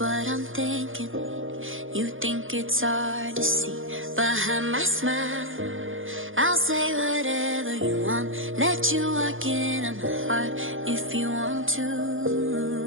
I'm thinking. You think it's hard to see behind my smile. I'll say whatever you want, let you walk into my heart if you want to.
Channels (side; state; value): left; late; 0.58 ms